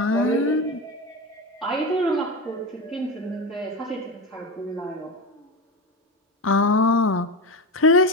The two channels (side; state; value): both; normal; correlation 0.20